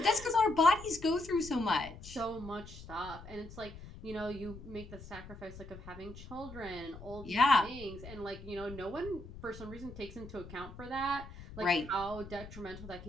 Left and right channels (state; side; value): noise; left; rumble, 14 dB below the sound